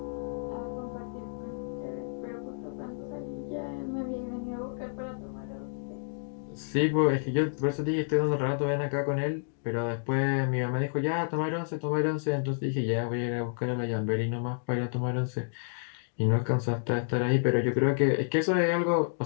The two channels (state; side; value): silent; right; digital silence